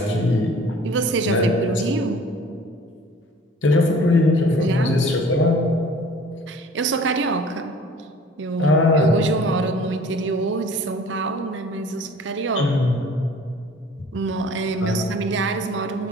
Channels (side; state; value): both; normal; correlation 0.49